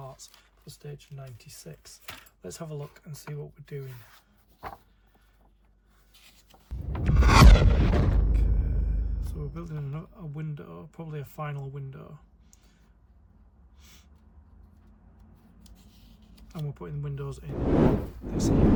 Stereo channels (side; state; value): both; identical; correlation 1.00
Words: for stage 96. Let's have a look and see what we're doing. Okay, so we're building a window, probably a final window. And we're putting windows in this